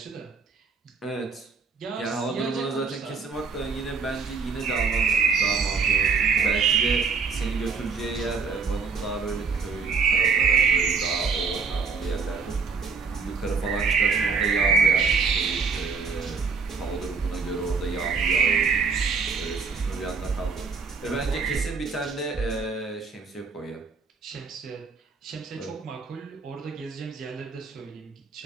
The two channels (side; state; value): left; quieter; 5.1 dB